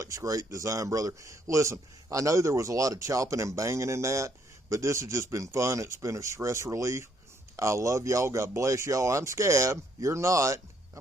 great design, brother. Listen, I know there was a lot of chopping and banging in that, but this has just been fun. It's been a stress relief. I love y'all. God bless y'all. I'm Scab. You're not.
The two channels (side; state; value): both; normal; correlation 0.70